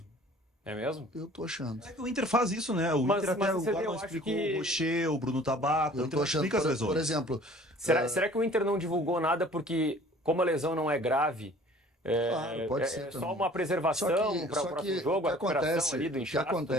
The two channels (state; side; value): normal; both; correlation 0.50